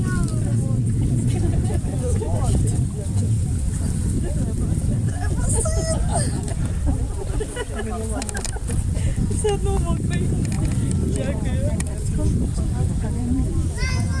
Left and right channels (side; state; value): both; identical; correlation 1.00